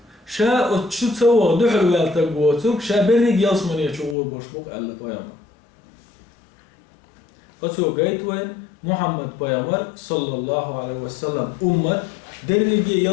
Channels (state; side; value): drops out; right; at 4.2 s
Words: شا شو تسوى دحر ويل تقوتك شا بريق يلسمني شعور بوشبق ألا بيامر أتو قيت وين محمد بيامر صلى الله عليه وسلم أمة دريق